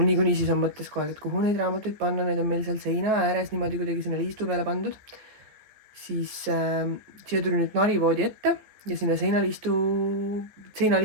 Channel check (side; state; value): left; late; 15 ms